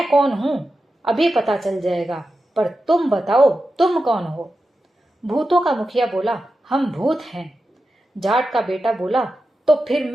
कौन हूं अभी पता चल जाएगा, पर तुम बताओ तुम कौन हो। भूतों का मुखिया बोला, हम भूत हैं। जाट का बेटा बोला, तो फिर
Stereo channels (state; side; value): normal; both; correlation 0.91